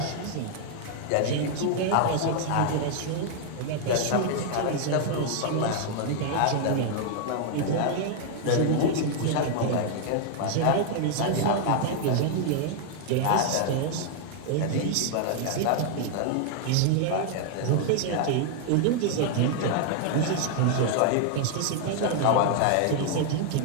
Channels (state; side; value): different; both; correlation 0.00